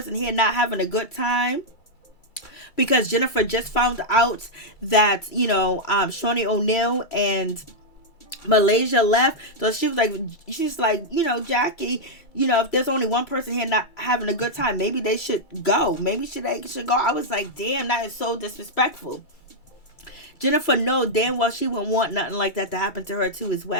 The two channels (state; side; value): late; right; 2.3 ms